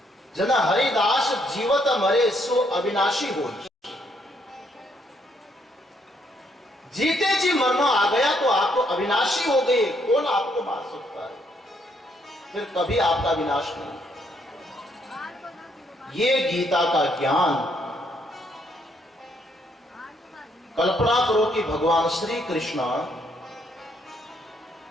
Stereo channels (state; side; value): normal; both; correlation 0.72